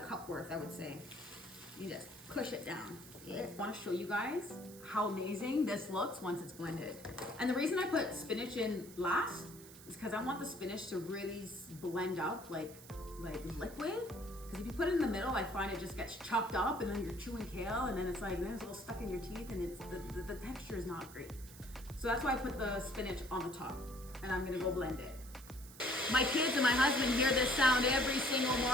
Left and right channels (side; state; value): right; noise; hiss, 18 dB below the sound